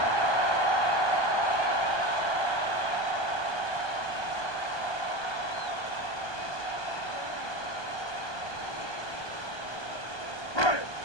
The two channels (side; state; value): right; late; 1.2 ms